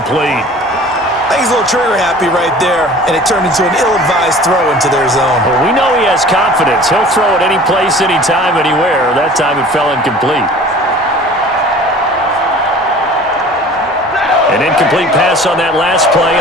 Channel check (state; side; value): normal; both; correlation 0.45